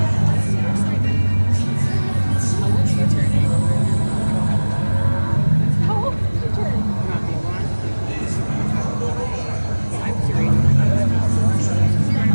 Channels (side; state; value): both; inverted; correlation -1.00